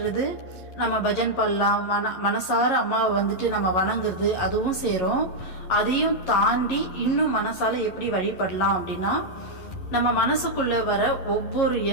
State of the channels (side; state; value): right; late; 11 ms